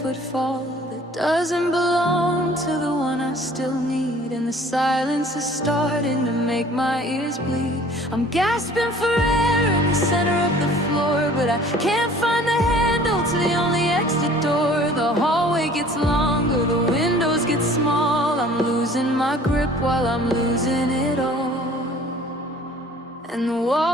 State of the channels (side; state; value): both; normal; correlation 0.51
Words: that doesn't belong to the one I still need. And the silence is starting to make my ears bleed. I'm gasping for air in the center of the floor, but I can't find the handle to the only exit door. The hallway gets longer, the windows get small. I'm losing my grip while I'm losing it all, and the